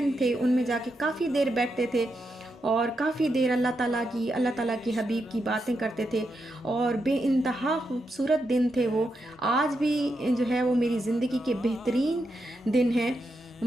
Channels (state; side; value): normal; both; correlation 0.84